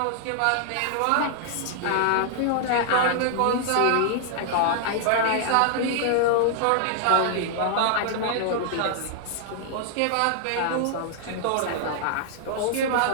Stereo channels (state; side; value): different; both; correlation 0.00